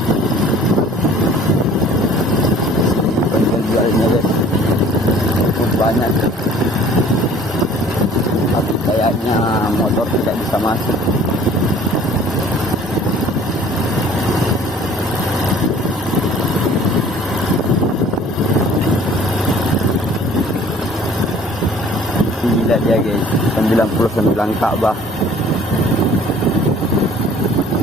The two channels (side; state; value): both; normal; correlation 0.51